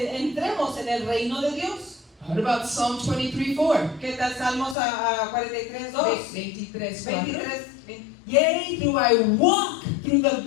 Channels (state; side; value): drops out; right; at 4.8 s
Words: entremos en el reino de Dios. What about Psalm 23:4? ¿Qué tal Salmos a 43:2? 23:4. 23. Yea, do I walk through the